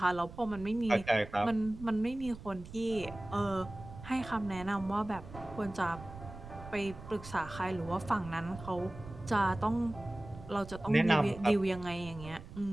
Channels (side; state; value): right; noise; rumble, 14 dB below the sound